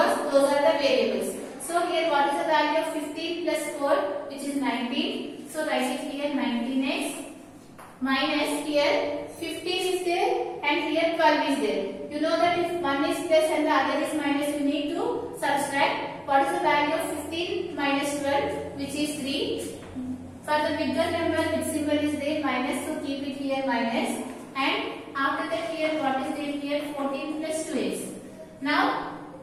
those are the variables. So here what is the value of 15 plus 4, which is 19. So write it here 19x minus here 15 is there and here 12 is there. You know that if one is plus and the other is minus, you need to subtract. What is the value of 15 minus 12, which is 3. For the bigger number, which symbol is there? Minus. So keep it here minus. And after that here what is there here? 14 plus 2x. Now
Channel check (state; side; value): identical; both; correlation 1.00